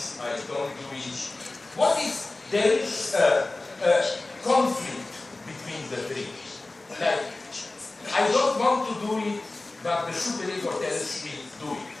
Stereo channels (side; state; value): right; quieter; 3.0 dB